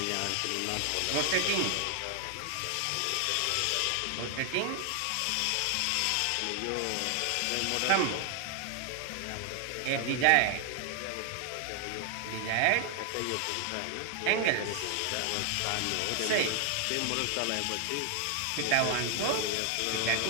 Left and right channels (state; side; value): different; both; correlation 0.00